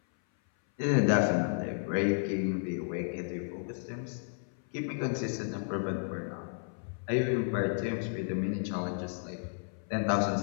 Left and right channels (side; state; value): right; silent; 56 dB below the other